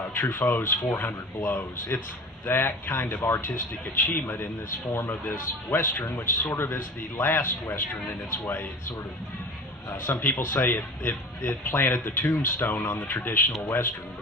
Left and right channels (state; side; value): normal; both; correlation 0.37